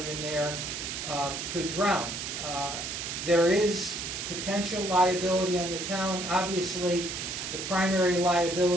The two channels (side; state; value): right; noise; hiss, 5 dB below the sound